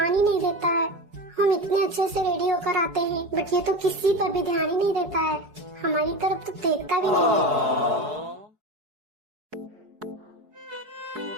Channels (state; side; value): late; left; 4.7 ms